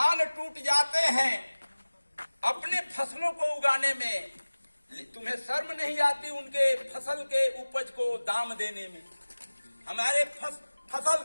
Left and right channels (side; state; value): both; inverted; correlation -1.00